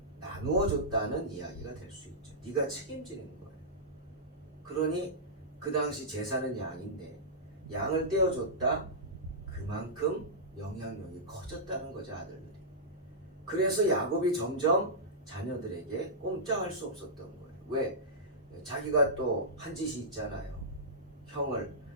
나누어 줬다는 이야기가 될 수 있죠. 네가 책임지는 거예요. 그러니 그 당시 제사는 양인데 양을 떼어줬다, 그만큼 영향력이 커졌다는 거죠, 아들들이. 그래서 야곱이 점점 자녀들에게 꼼짝할 수 없었던 거예요. 왜? 자기가 또 한 짓이 있잖아요. 형을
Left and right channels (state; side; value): normal; both; correlation -0.14